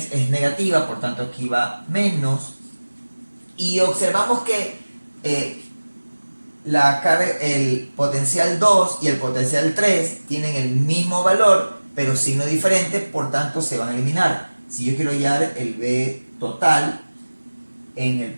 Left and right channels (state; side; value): inverted; both; correlation -1.00